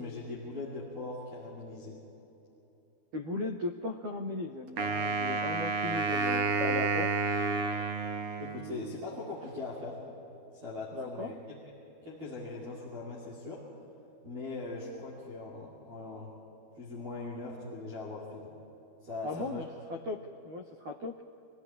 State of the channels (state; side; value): late; left; 13 ms